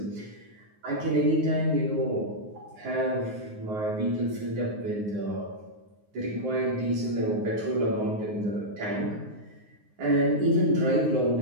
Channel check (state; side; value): late; left; 9.5 ms